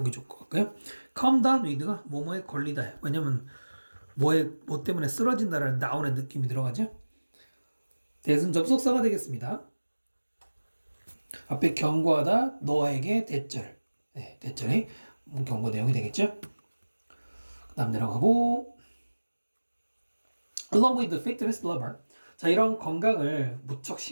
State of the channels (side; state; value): both; inverted; correlation -1.00